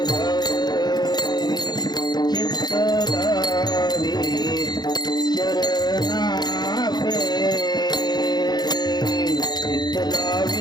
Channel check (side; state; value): right; late; 0.20 ms